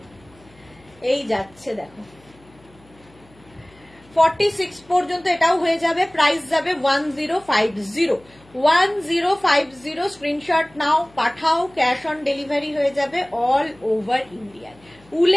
এই যাচ্ছে দেখো 46 পর্যন্ত এটাও হয়ে যাবে, প্রাইস যাবে 1050। স্ক্রিনশট নাও, পাঠাও, ক্যাশ অন ডেলিভারি হয়ে যাবে অল ওভার ইন্ডিয়ায়।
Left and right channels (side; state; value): left; noise; hum, 28 dB below the sound